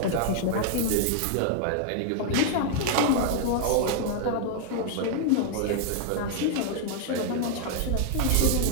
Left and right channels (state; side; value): different; both; correlation 0.00